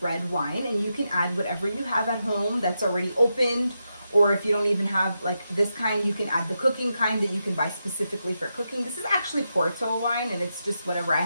red wine, and you can add whatever you have at home that's already opened, or if you don't even have like this kind, you can add the cooking kind that you can buy specifically for cooking. This is actually Porto wine, and it's just whatever I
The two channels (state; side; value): inverted; both; correlation -0.86